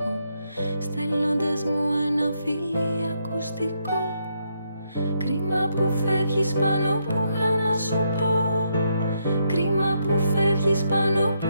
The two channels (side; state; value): both; inverted; correlation -0.78